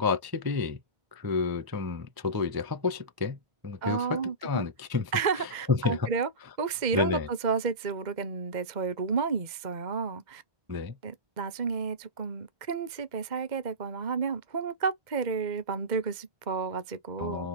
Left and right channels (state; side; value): late; left; 2.0 ms